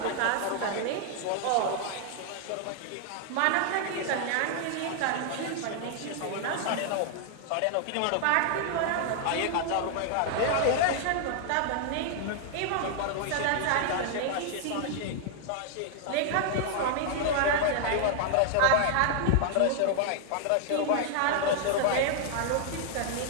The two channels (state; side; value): different; both; correlation 0.00